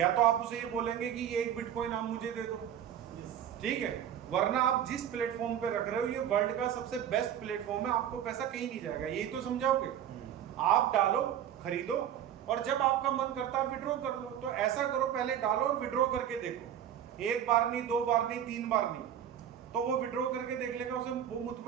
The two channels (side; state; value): left; quieter; 9.9 dB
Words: तो आप उसे ये बोलेंगे कि ये 1 बिटकॉइन आप मुझे दे दो, ठीक है। वरना आप जिस प्लेटफॉर्म पे रख रहे हो ये वर्ल्ड का सबसे बेस्ट प्लेटफॉर्म है, आपको पैसा कहीं नहीं जाएगा, यही तो समझाओगे। आप डालो, खरीदो, और जब आपका मन करता है विड्रॉ कर लो। तो ऐसा करो, पहले डालो और विड्रॉ करके देखो, 1 बार नहीं, 2 बार नहीं, 3 बार नहीं, तो वो विड्रॉ करके देख लेगा, उसे वो